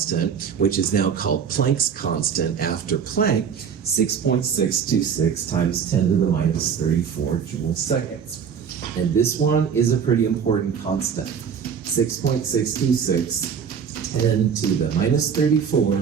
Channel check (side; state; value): left; quieter; 7.2 dB